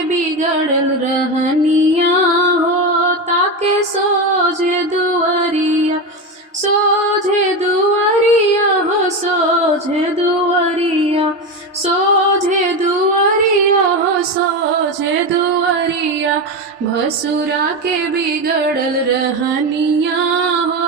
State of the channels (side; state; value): both; normal; correlation 0.17